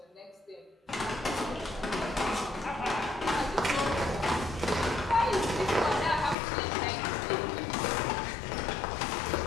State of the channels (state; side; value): drops out; right; at 6.4 s